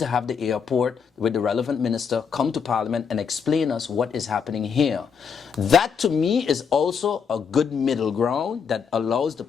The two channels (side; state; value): right; quieter; 6.4 dB